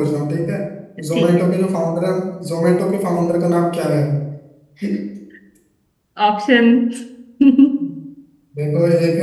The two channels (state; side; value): identical; both; correlation 1.00